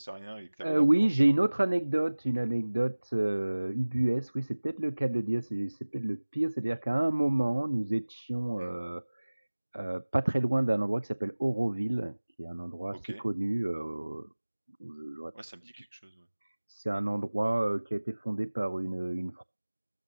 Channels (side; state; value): both; inverted; correlation -1.00